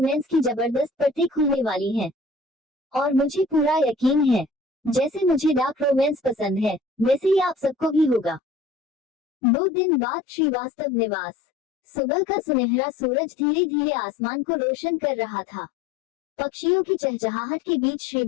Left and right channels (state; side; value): drops out; right; at 8.4 s